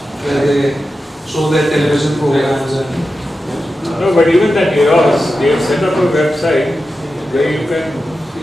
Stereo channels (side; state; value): both; normal; correlation 0.91